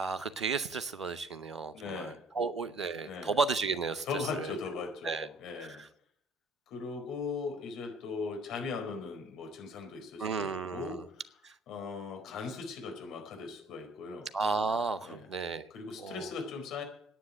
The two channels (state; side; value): normal; both; correlation 0.55